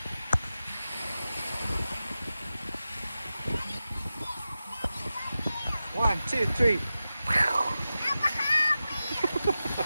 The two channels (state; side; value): inverted; both; correlation -0.93